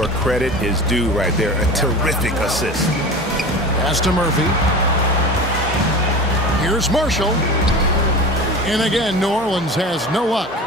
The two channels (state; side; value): normal; both; correlation 0.33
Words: credit is due right there. A terrific assist. Pass to Murphy. Here's Marshall. And again, New Orleans has no luck.